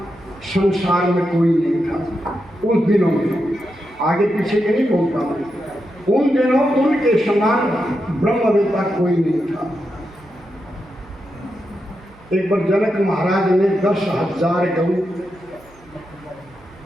संसार में कोई नहीं था उन दिनों में। आगे पीछे के नहीं बोलता मैं, उन दिनों उनके समान ब्रह्मवेत्ता कोई नहीं था। एक बार जनक महाराज ने 10,000 गऊ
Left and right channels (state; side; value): noise; right; hum, 26 dB below the sound